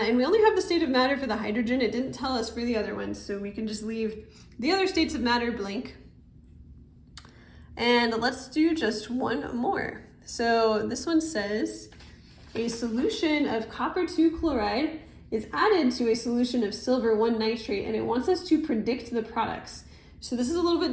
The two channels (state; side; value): identical; both; correlation 1.00